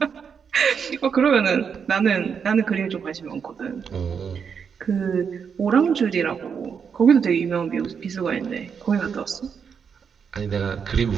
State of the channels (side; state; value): left; quieter; 6.7 dB